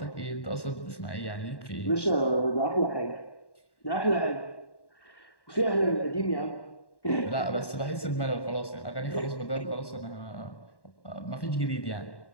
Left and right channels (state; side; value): late; right; 1.1 ms